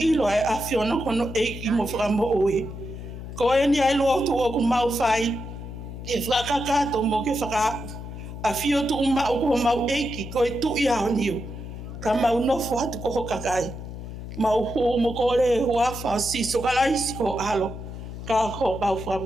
e afiona kono eiki mo whakamoui. Ko e ni ai Lotu o ku mau whai. E whakakato mo ke whakaapu. A fio tu uma o ko mau eiki ko e tu ia o niu. Ka mau nofo hatu ko hokakai. Mau hu mo ko le huafa si so kalaisi ko alo. Ka ho mau wha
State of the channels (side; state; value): left; noise; hum, 10 dB below the sound